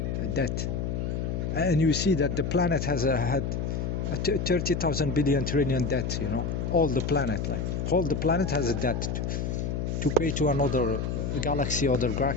and you see that the planet has had 30,000 billion trillion debt, all the planet, like all the planet has a debt to pay to another galaxy or the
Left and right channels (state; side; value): noise; left; hum, 1 dB below the sound